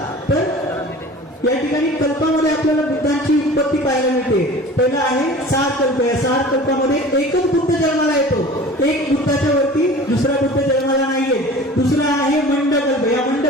तर या ठिकाणी कल्पामध्ये आपल्याला बुद्धांची उत्पत्ती पाहायला मिळते. पहिला आहे 6 कल्प. या 6 कल्पामध्ये एकच बुद्ध जन्माला येतो. एक बुद्धाच्या वरती दुसरा बुद्ध जन्माला नाहीये. दुसरा आहे मंडकल्प. या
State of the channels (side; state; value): both; normal; correlation 0.41